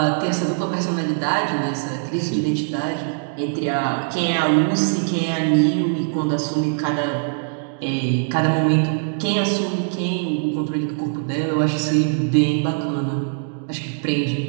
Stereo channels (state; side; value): silent; left; digital silence